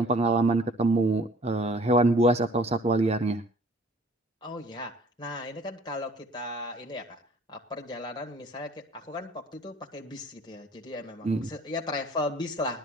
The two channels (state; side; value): normal; both; correlation 0.53